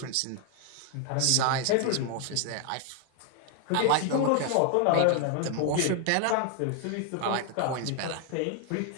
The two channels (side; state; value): both; different; correlation 0.00